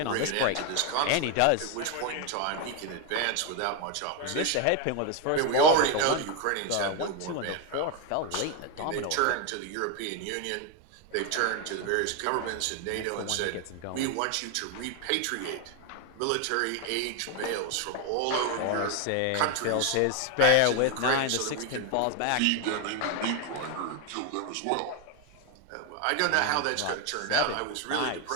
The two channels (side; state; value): both; different; correlation 0.01